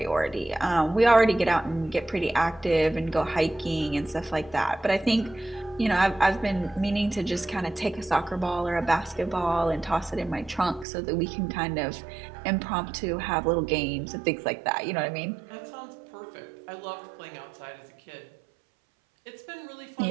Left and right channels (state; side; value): drops out; left; at 10.9 s